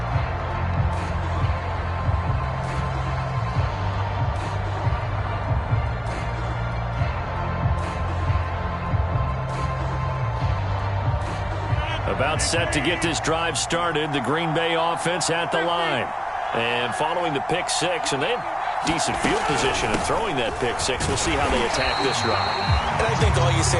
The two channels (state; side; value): identical; both; correlation 1.00